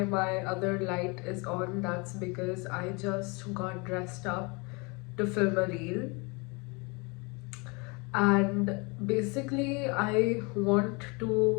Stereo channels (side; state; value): right; quieter; 29.3 dB